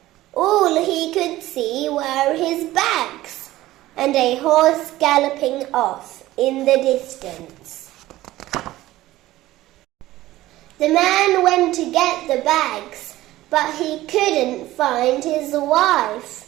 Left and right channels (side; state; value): left; quieter; 16.2 dB